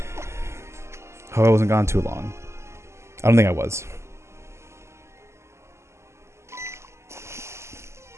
Hope I wasn't gone too long. I don't think I was.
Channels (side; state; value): left; late; 0.13 ms